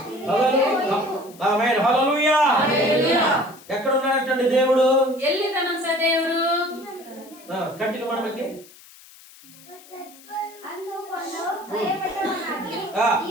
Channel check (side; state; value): left; noise; hiss, 22 dB below the sound